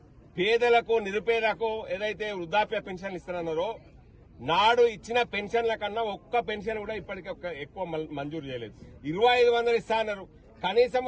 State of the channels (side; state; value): both; identical; correlation 1.00